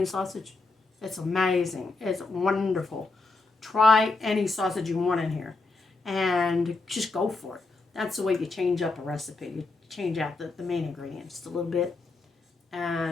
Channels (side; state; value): right; quieter; 3.6 dB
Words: sausage. It's amazing. It's wonderful. Try any sausage you want in here and just go for it. That's the way you change up a recipe. You change out the main ingredients a little bit.